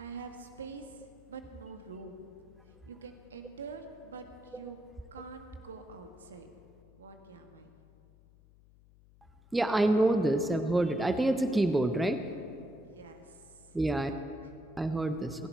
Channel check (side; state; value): left; noise; hum, 26 dB below the sound